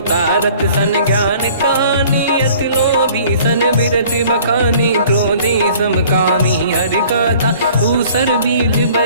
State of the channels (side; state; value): both; inverted; correlation -0.52